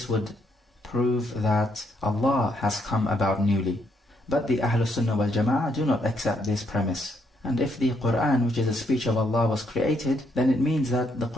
would prove that Allah has come about newly. But the Ahlul Sunnah wal Jama'ah do not accept this premise. And if the Quran, which is a speech of Allah, was created, then it means that the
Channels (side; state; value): both; normal; correlation 0.74